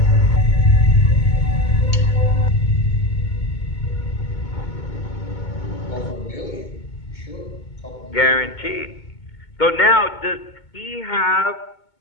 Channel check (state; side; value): late; right; 2.2 ms